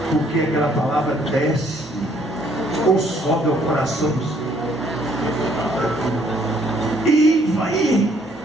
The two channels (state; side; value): normal; both; correlation 0.65